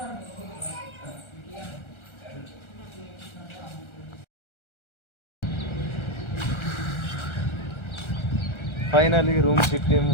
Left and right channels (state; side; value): late; right; 1.3 ms